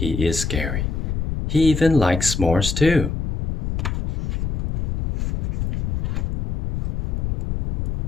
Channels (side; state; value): left; noise; rumble, 2 dB below the sound